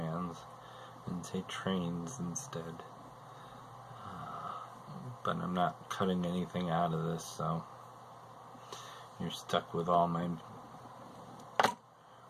and say trains instead. But I'm not cutting anything out of this, so you're stuck with all my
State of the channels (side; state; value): both; identical; correlation 1.00